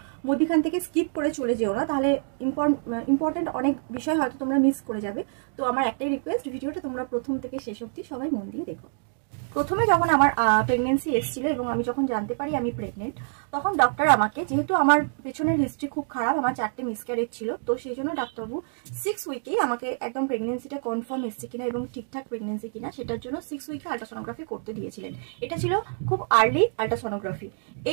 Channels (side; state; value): left; silent; digital silence